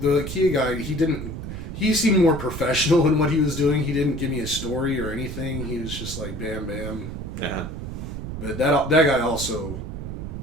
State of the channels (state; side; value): noise; right; rumble, 7 dB below the sound